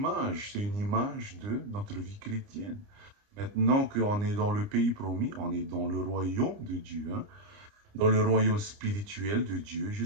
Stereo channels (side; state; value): left; late; 29 ms